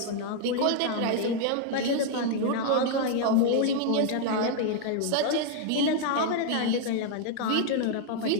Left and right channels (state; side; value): different; both; correlation 0.00